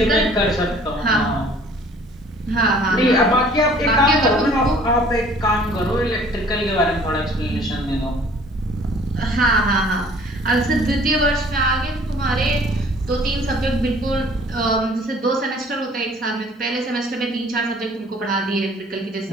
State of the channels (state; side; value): normal; both; correlation 0.54